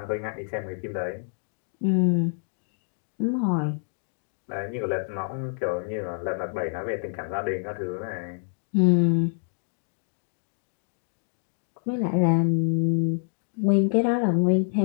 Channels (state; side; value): silent; right; 60 dB below the other